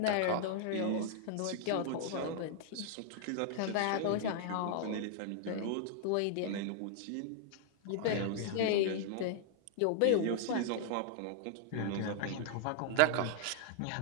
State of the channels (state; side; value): different; both; correlation 0.00